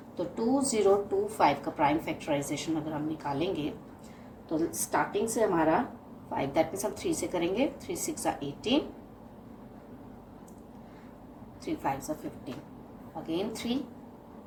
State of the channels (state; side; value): identical; both; correlation 1.00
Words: तो 2025 का प्राइम फैक्टराइजेशन अगर हम निकालेंगे तो स्टार्टिंग से हमारा 5, दैट मीन्स हम 3 से करेंगे। 3 6 18, 3 5 15, अगेन 3